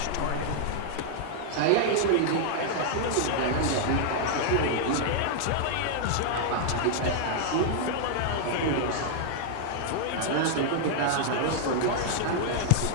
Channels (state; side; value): different; both; correlation -0.01